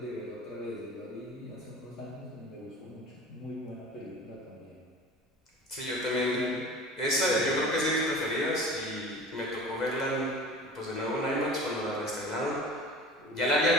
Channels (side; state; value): both; normal; correlation 0.40